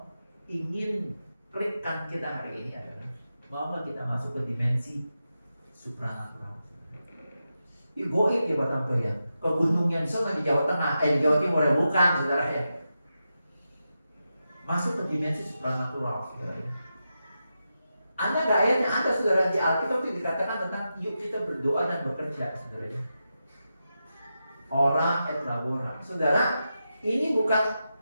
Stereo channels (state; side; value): inverted; both; correlation -0.89